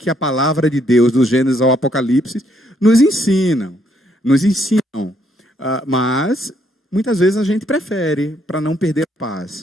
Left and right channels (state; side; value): normal; both; correlation 0.71